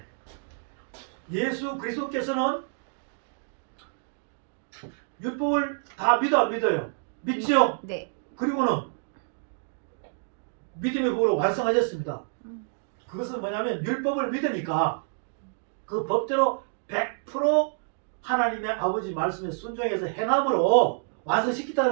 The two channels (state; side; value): silent; left; digital silence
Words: 예수 그리스도께서는 율법을 다 믿어 안 믿어요? 믿죠? 네. 그리고는 믿음의 법으로 완성하셨습니다. 그것은 뭐냐면 율법을 믿으니까 그 법대로 100% 하나님의 아버지 말씀에 순종해서 행함으로